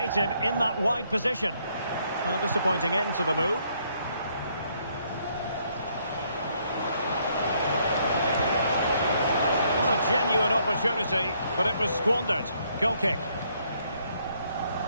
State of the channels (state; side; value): inverted; both; correlation -0.70